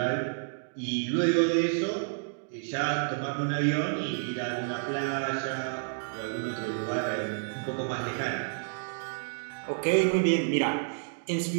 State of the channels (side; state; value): left; silent; digital silence